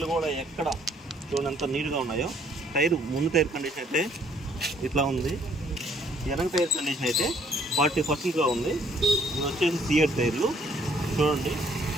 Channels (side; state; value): both; normal; correlation 0.64